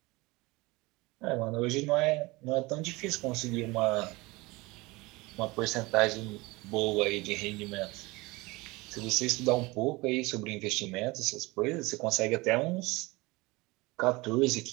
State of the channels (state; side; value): quieter; left; 23.0 dB